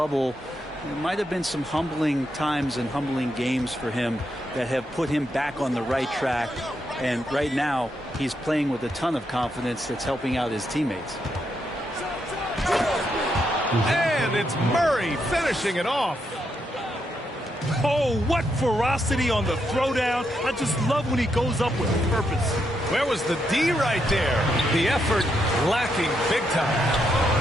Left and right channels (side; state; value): both; normal; correlation 0.80